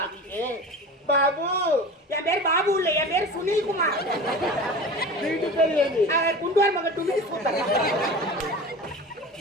ठीक है बाबू என் பேர் பாபு இல்ல என் பேர் சுனில் குமார் வீட்டு பேர் ఏంది குண்டுவார் மகன் டுமில் கூத்தர்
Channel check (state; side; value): normal; both; correlation 0.34